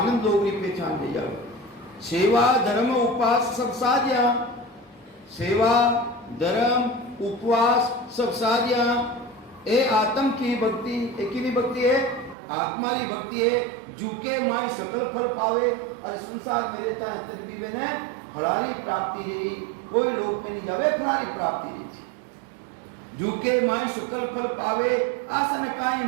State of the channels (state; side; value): drops out; left; at 12.4 s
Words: लोगरी पहचान ले जावे। सेवा धर्म उपवास सब साध्या, सेवा धर्म उपवास सब साध्या। ए आत्म की भक्ति, एक ही भक्ति है आत्मा की भक्ति है। झुके माई सकल फल पावे, और संसार में रहता है तर भी बने फलारी प्राप्ति रही, कोई लोक में नहीं जावे फलारी प्राप्ति रही। झुके माई सकल फल पावे, आसन काई